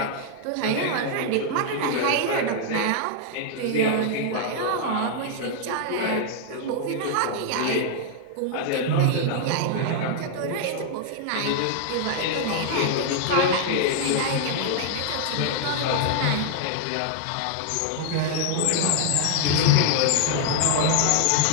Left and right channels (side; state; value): both; different; correlation 0.00